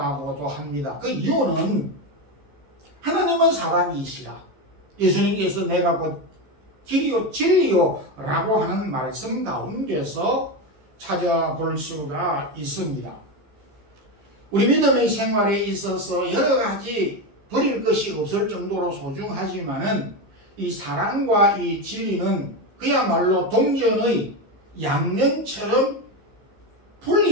합니다. 그 이유는 하나님은 사랑이시라. 예수님께서 내가 곧 길이요 진리요 라고 하는 말씀 가운데서 찾아볼 수가 있습니다. 우리 믿음의 생활에 있어서 여러 가지 버릴 것이 없을 정도로 소중하지만은 이 사랑과 이 진리는 그야말로 동전의 양면처럼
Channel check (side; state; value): left; late; 15 ms